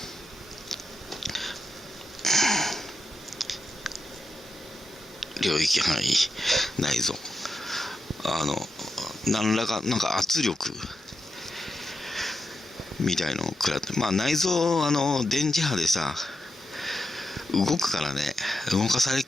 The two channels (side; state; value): both; normal; correlation 0.87